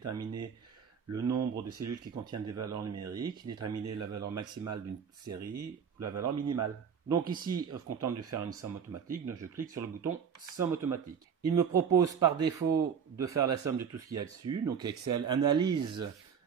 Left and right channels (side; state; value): left; quieter; 7.1 dB